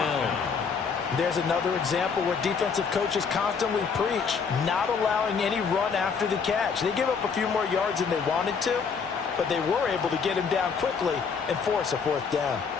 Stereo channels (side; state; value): right; quieter; 5.8 dB